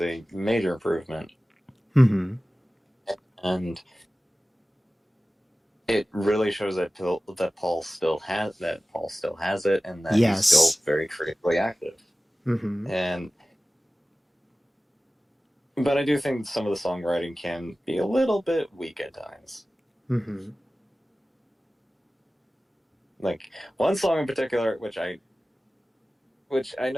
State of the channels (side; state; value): both; normal; correlation 0.96